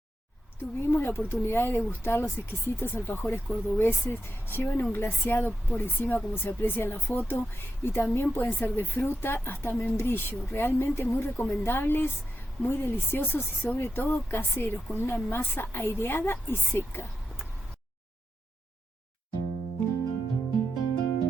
Tuvimos la oportunidad de degustar los exquisitos alfajores cordobeses. Llevan un glaseado por encima, como se aprecia en la foto, y también pueden ser de fruta hasta membrillo. Realmente muy recomendables, muy deliciosos y sobre todo caseros, con una masa aireada y seca.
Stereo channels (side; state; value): both; normal; correlation 0.87